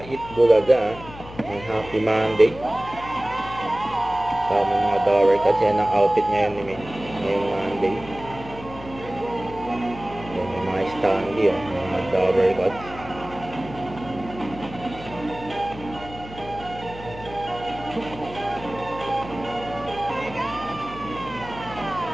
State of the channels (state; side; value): noise; left; hum, 15 dB below the sound